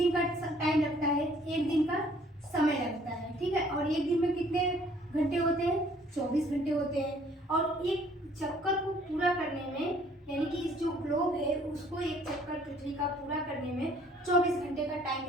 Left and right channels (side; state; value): both; normal; correlation 0.59